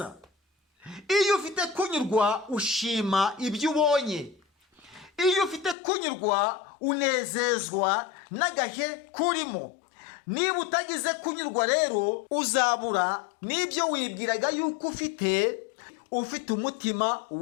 Iyo ufite kunyurwa ushima ibyo ubonye. Iyo ufite kunyurwa unezezwa n'agahe kurimo. Niba utagize kunyurwa rero uzabura n'ibyo wibwiraga yuko ufite umutima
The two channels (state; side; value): drops out; right; at 5.8 s